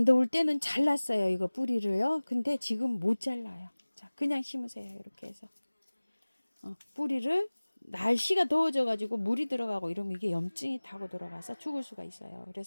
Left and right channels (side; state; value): both; inverted; correlation -1.00